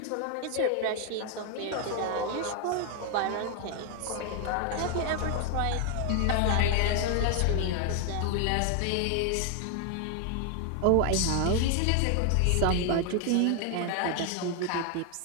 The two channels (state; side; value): different; both; correlation 0.00